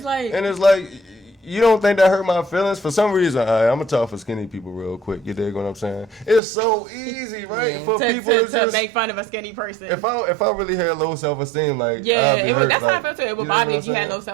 like... And it's like, you don't think that hurt my feelings? For some reason, I'm going to talk for skinny people real quick, you dig what I'm saying? It's so easy, right? For people to just... make fun of a skinny person. If I really had low self-esteem, like, I'd be hurt. That's how I felt too. It would bother me if you had low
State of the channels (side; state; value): left; drops out; at 6.4 s